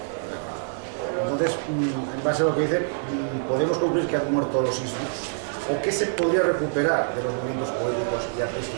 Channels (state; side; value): silent; left; digital silence